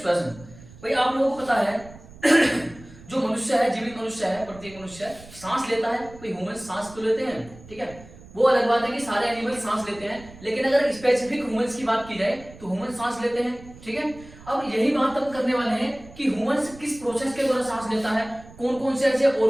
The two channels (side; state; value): right; noise; rumble, 20 dB below the sound